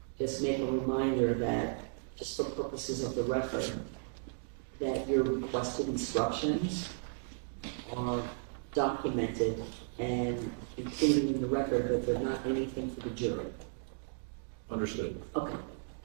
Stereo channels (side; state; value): left; silent; digital silence